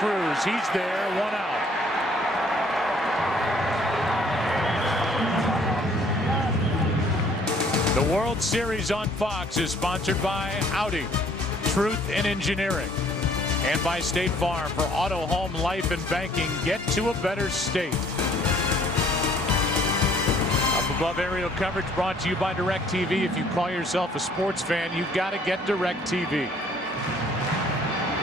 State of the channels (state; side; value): normal; both; correlation 0.60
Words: He's there, 1 out. The World Series on Fox is sponsored by Audi, Truth in Engineering, and by State Farm. For auto, home, life, and banking, get to a better state. Up above aerial coverage brought to you by DirecTV. If you call yourself a sports fan, you've got to get DirecTV.